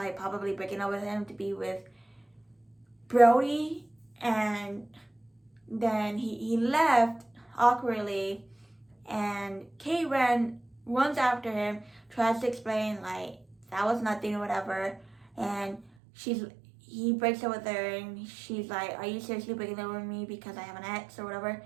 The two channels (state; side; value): drops out; left; at 15.9 s